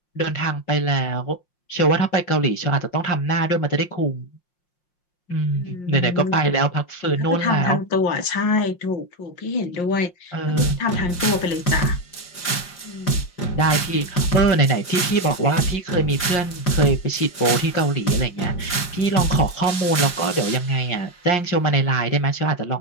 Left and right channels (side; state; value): right; late; 5.6 ms